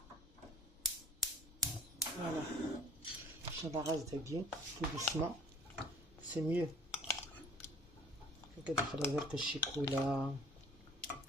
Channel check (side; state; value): both; normal; correlation 0.54